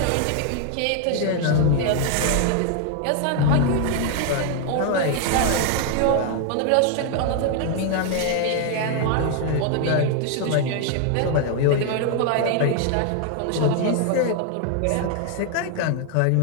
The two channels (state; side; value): different; both; correlation 0.00